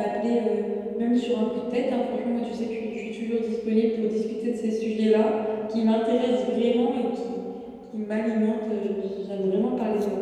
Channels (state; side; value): identical; both; correlation 1.00